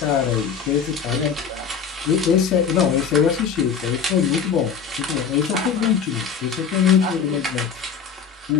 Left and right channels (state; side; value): quieter; right; 6.8 dB